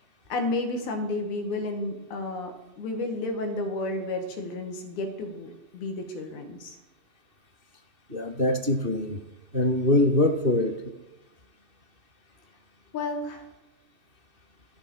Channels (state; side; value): late; left; 2.6 ms